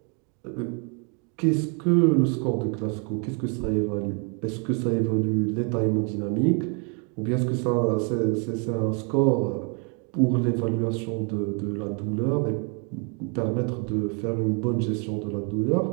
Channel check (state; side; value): quieter; left; 37.0 dB